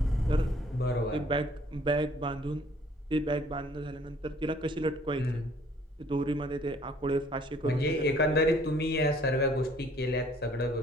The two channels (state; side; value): normal; both; correlation 0.58